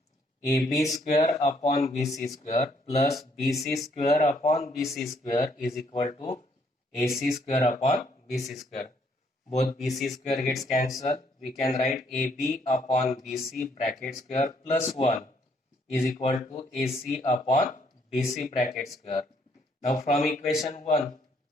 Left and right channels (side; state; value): both; normal; correlation 0.69